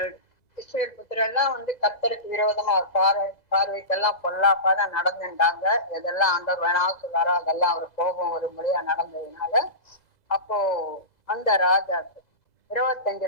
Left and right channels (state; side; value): late; right; 2.0 ms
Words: இஸ்ரவேல் புத்திரெல்லாம் கர்த்தருக்கு விரோதமா பார்வைக்கெல்லாம் பொல்லாப்பாதான் நடந்துட்டாங்க. எதெல்லாம் ஆண்டவர் வேணாலும் சொல்றாரோ அதெல்லாம் அவர் கோபம் ஒரு முறையா நடந்ததுனால அப்போ அந்த ராஜா